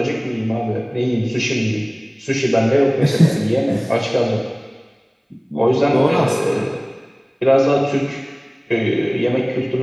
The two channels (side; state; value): both; identical; correlation 1.00